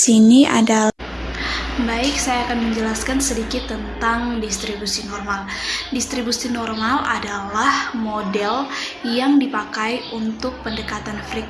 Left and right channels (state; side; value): identical; both; correlation 1.00